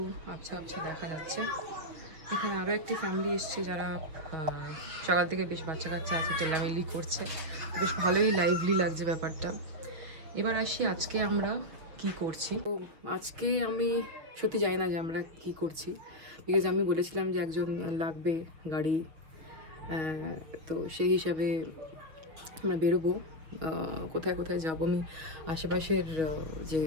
আবছা আবছা দেখা যাচ্ছে। এখানে আরও একটি ফ্যামিলি এসছে যারা সকাল থেকে বেশ বাচ্চা কাচ্চা আছে, চেল্লামিল্লি করছে, বেশ ভালোই লাইভলি লাগছে ব্যাপারটা। এবার আসি আজকে আমরা কি করছি। তো আজকে আমি সত্যি জানি না যে আমরা কি করছি, বিকজ আমি বলেছিলাম যে একজন লাগবে গাড়ি, তো সেই হিসাবে আমরা বেরোবো। কোথায় কোথায় যাবো, আমি আশেপাশের যে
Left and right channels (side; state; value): left; late; 6.3 ms